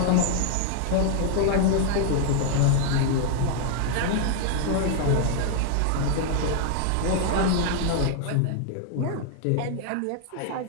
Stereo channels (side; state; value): both; different; correlation -0.01